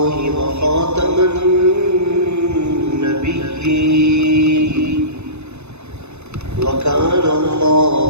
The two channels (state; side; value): late; left; 0.81 ms